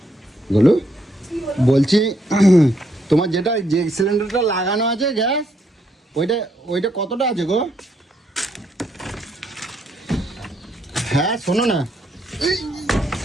গুলো বলছি, তোমার যেটা যে সিলিন্ডারটা লাগানো আছে গ্যাস, ওইটা ওইটা কতটা আছে গো? হ্যাঁ শোনো না,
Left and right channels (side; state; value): both; normal; correlation 0.74